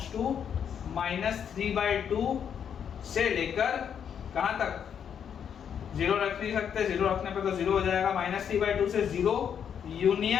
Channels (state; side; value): quieter; right; 8.1 dB